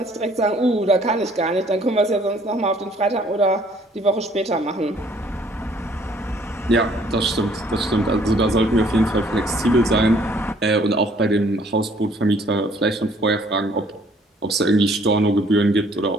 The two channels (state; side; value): normal; both; correlation 0.60